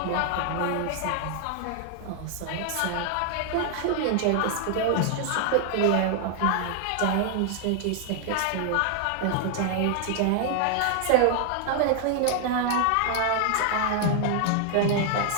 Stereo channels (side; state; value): both; different; correlation 0.00